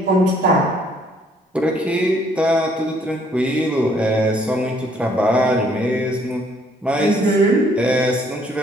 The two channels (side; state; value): both; normal; correlation 0.64